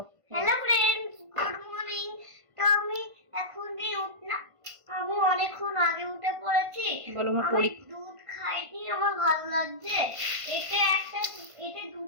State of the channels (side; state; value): left; late; 1.5 ms